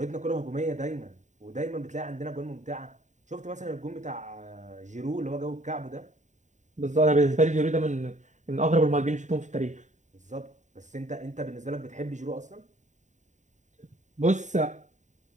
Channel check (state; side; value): late; left; 0.35 ms